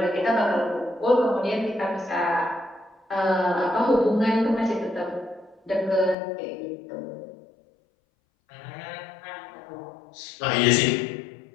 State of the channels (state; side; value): drops out; right; at 6.2 s